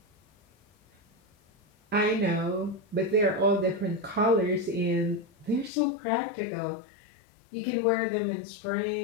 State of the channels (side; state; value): right; drops out; at 5.7 s